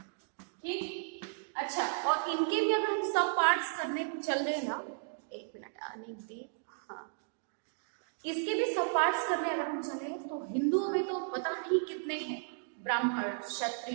ठीक, अच्छा, और इनके भी अगर हम सब पार्ट्स करने को चल रहे हैं ना, एक मिनट आने दी, हाँ, इसके भी सब पार्ट्स करने अगर हम चले तो हिंदुओं में तो पता नहीं कितने हैं, ब्राह्मण,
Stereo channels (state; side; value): silent; left; digital silence